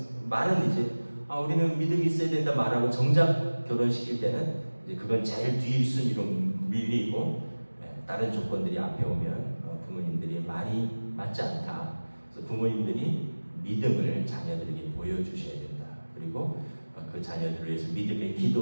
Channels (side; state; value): both; inverted; correlation -1.00